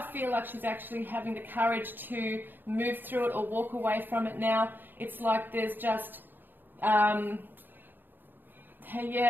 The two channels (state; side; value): late; left; 0.093 ms